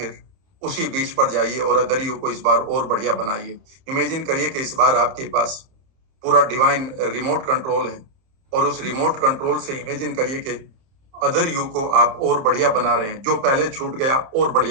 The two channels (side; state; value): left; late; 30 ms